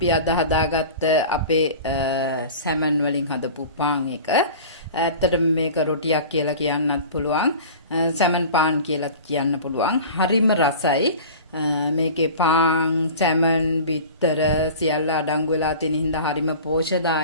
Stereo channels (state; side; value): inverted; both; correlation -0.38